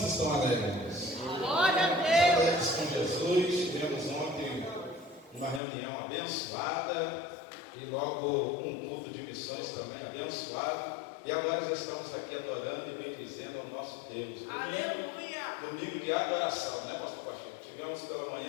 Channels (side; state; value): right; drops out; at 5.6 s